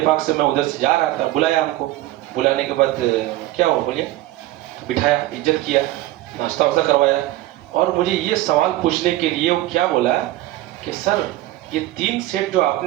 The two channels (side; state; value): left; quieter; 16.3 dB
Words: से मैं उधर से जा रहा था, बुलाया हमको। बुलाने के बाद क्या हुआ बोलिए, बिठाया, इज्जत किया, नाश्ता वास्ता करवाया, और मुझे ये सवाल पूछने के लिए वो क्या बोला कि सर ये 3 सेट जो